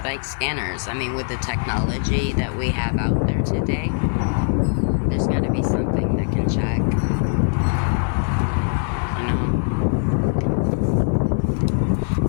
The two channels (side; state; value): right; silent; 56 dB below the other